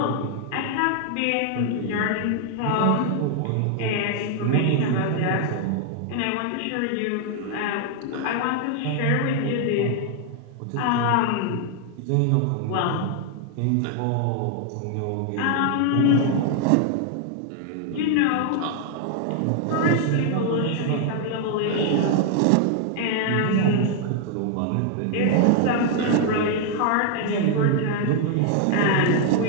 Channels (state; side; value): different; both; correlation 0.00